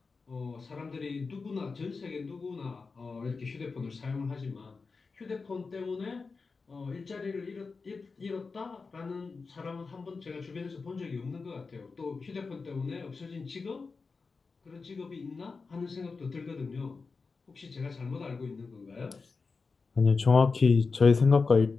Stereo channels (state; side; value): quieter; right; 4.5 dB